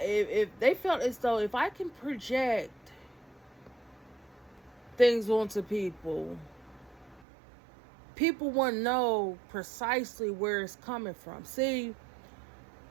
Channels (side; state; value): left; drops out; at 7.2 s